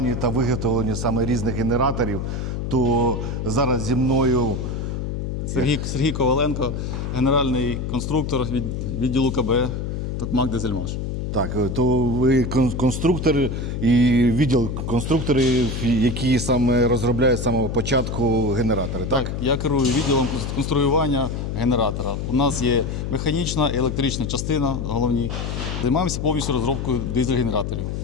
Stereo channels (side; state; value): left; noise; hum, 3 dB below the sound